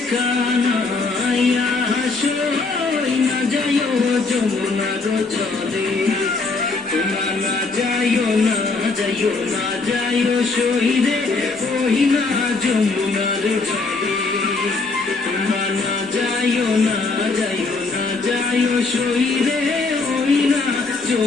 কানাইয়া সই না যাইও যমুনার জলে তোমরা না যাইও না যাইও না যাইও সই রে ওই না যমুনার জলে তোমরা না যাইও না যাইও না যাইও সই রে ওই না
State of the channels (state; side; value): quieter; right; 3.8 dB